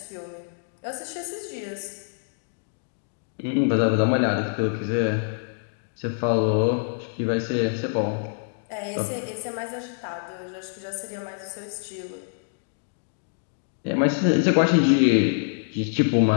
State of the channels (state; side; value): silent; right; digital silence